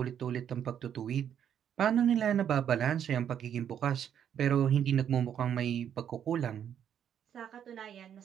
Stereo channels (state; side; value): quieter; left; 9.1 dB